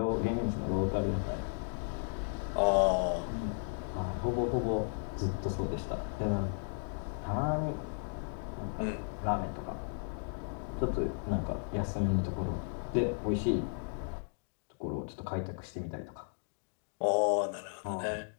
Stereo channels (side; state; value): right; silent; 55 dB below the other